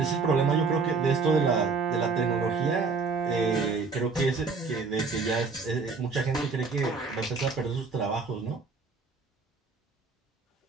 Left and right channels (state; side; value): quieter; left; 4.5 dB